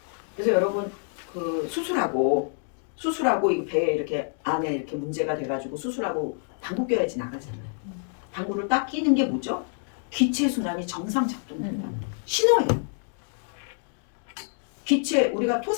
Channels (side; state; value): right; silent; 60 dB below the other